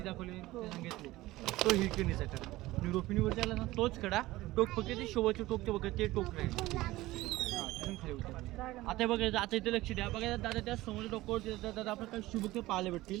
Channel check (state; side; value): quieter; left; 17.9 dB